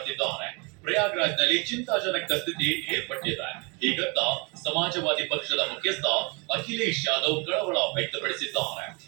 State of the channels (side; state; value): left; quieter; 30.4 dB